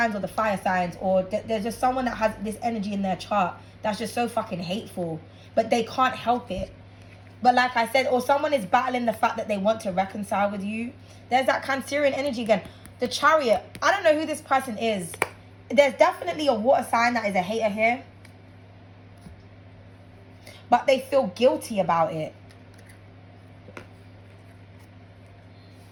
or the fire signs, or there's just someone that has this energy in their chart that's just so fucking hateful, but they can't help it. But like I said, or someone is battling the fact that they want to reconcile with you. There's that Cancerian energy again. The Chariot. I don't know who this person is. There's definitely a water sign that is a hater here. But they feel guilty about it.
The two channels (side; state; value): both; identical; correlation 1.00